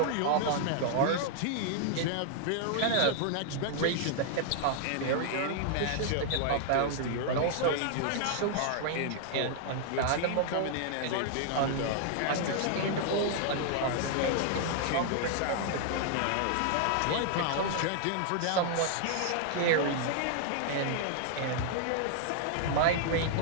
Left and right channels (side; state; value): both; different; correlation -0.01